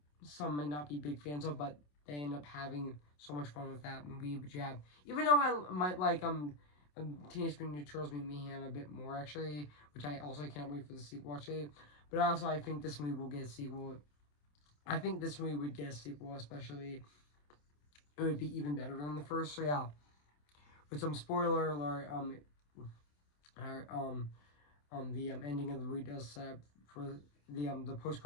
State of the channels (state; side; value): late; right; 27 ms